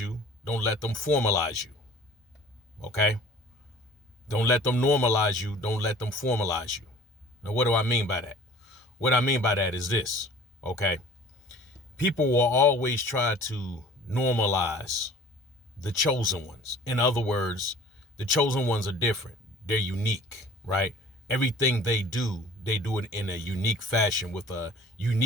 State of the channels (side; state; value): both; normal; correlation 0.47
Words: Don't Let Them Formalize You. Okay? Don't let them normalize you, don't let them formalize you. Now, what do I mean by that? What I mean by that is this, okay? People will always try to normalize the chosen ones. In other words, the chosen ones are different. They're unique, right? Everything they do it in a unique fashion with a